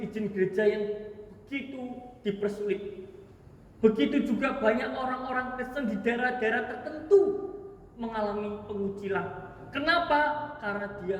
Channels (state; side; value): identical; both; correlation 1.00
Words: gereja yang begitu dipersulit. Begitu juga banyak orang-orang Kristen di daerah-daerah tertentu mengalami pengucilan. Kenapa? Karena dia